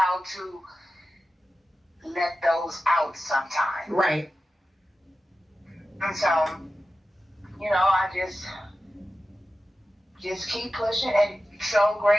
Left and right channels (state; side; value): normal; both; correlation 0.93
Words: to let those out sometimes. Right. And so, I just keep pushing, and so